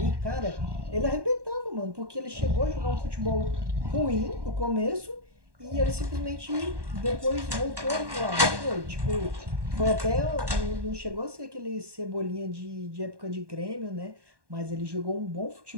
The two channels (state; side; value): late; left; 1.1 ms